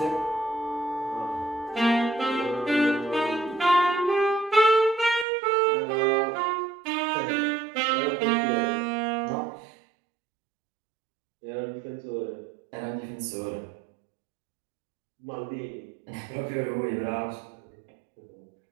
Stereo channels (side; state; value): left; drops out; at 5.2 s